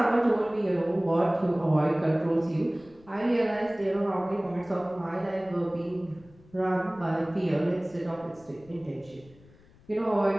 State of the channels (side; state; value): left; noise; rumble, 26 dB below the sound